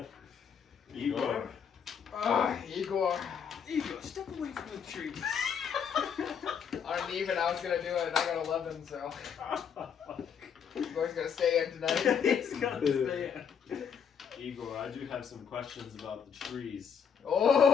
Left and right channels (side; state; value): right; quieter; 7.2 dB